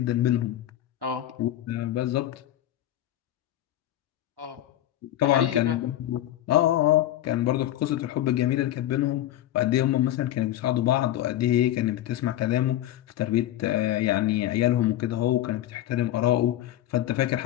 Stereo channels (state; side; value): quieter; right; 13.2 dB